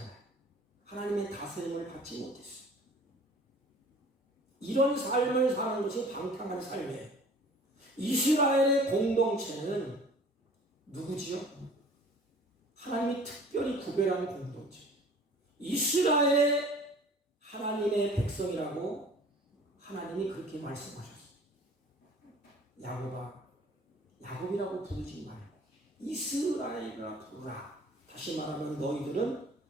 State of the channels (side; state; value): both; normal; correlation 0.48